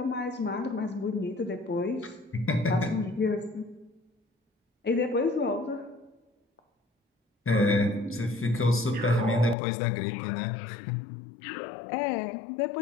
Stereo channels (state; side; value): drops out; right; at 9.6 s